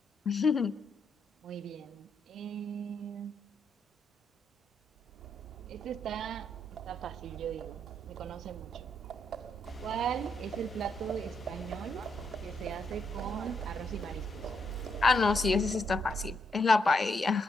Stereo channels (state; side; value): normal; both; correlation 0.77